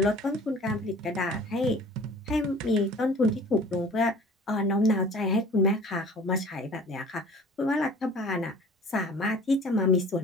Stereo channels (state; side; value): normal; both; correlation 0.46